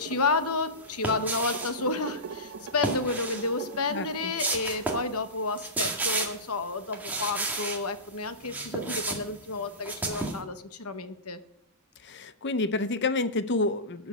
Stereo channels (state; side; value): normal; both; correlation -0.19